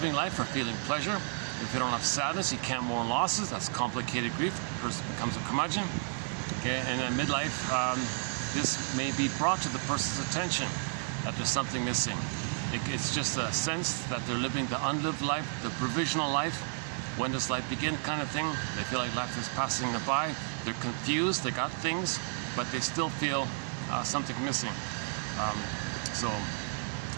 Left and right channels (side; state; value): left; silent; 56 dB below the other